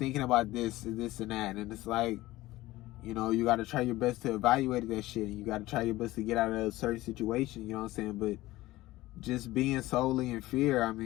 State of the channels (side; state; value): right; quieter; 17.6 dB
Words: about this and that. And it's like, you know, you gotta try your best to evaluate that shit, and you gotta try your best to get out of a certain situation, you know what I'm saying? But just being solely in fear, I